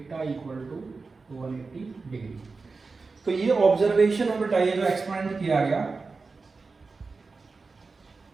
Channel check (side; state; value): left; quieter; 4.2 dB